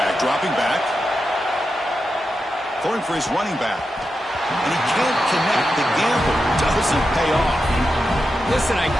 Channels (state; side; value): normal; both; correlation 0.89